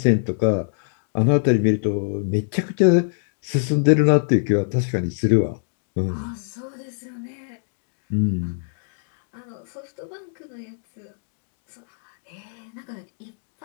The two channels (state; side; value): silent; right; digital silence